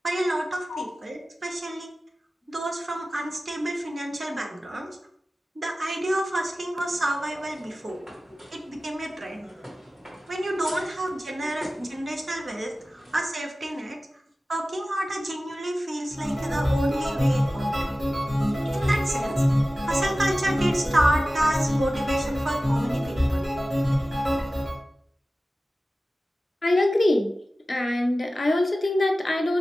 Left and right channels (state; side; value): normal; both; correlation 0.96